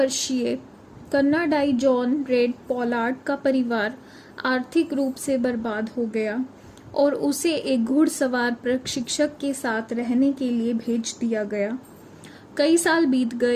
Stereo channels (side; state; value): both; identical; correlation 1.00